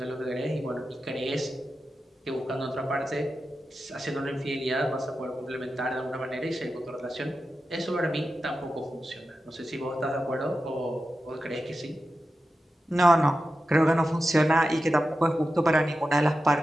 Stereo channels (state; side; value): normal; both; correlation 0.91